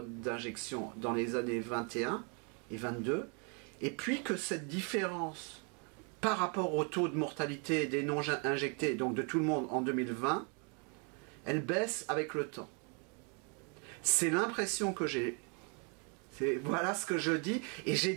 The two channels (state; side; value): quieter; left; 36.6 dB